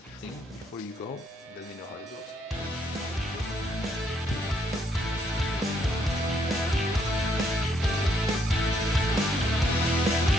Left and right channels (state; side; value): normal; both; correlation 0.72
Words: Before you go, let me know how it goes.